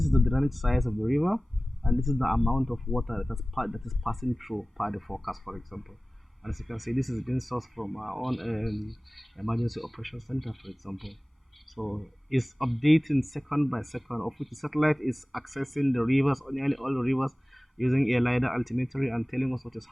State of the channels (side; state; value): both; normal; correlation 0.97